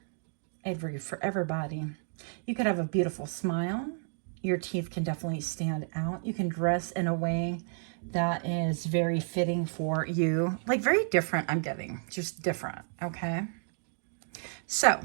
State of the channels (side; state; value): left; silent; 57 dB below the other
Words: I read for everybody. You could have a beautiful smile. Your teeth can definitely stand out. You can dress in a way that is very fitting for you. Like very different, I'm getting. Just different, okay? So,